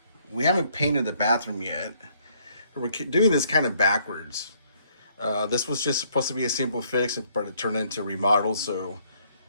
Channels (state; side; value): inverted; both; correlation -0.67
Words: we haven't painted the bathroom yet. We're doing this kind of backwards. This was just supposed to be a simple fix, but it turned into a remodel, so